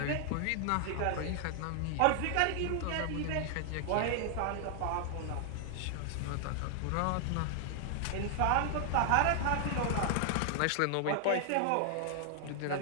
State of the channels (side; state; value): both; different; correlation 0.00